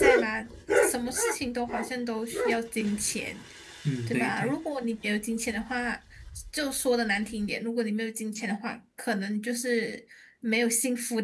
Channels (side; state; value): both; identical; correlation 1.00